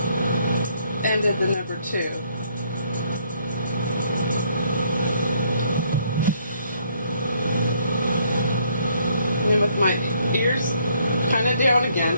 ended the number 2. And with my ears kind of down again.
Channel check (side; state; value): both; inverted; correlation -0.67